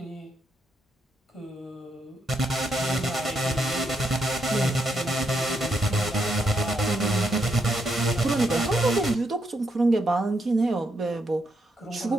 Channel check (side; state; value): both; normal; correlation 0.79